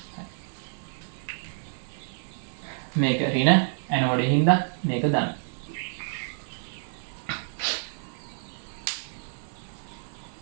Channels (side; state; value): left; silent; 59 dB below the other